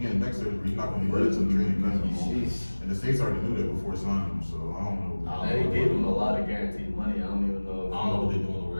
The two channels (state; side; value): inverted; both; correlation -1.00